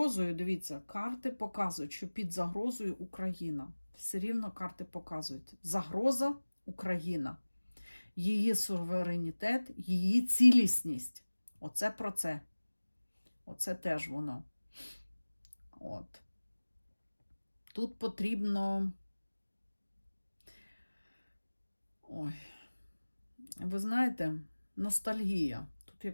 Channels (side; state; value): both; inverted; correlation -1.00